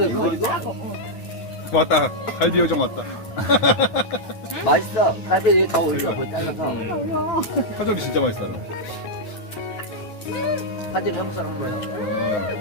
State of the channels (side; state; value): right; late; 9.7 ms